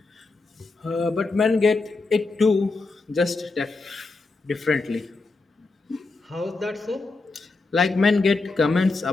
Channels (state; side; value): quieter; right; 3.6 dB